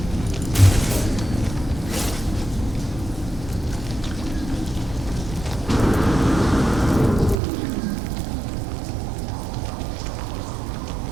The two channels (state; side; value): drops out; left; at 7.4 s